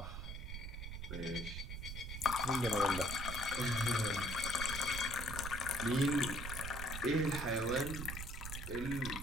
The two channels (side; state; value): right; noise; rumble, 6 dB below the sound